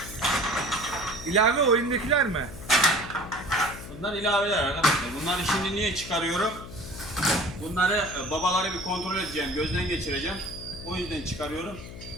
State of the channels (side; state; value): left; noise; hum, 13 dB below the sound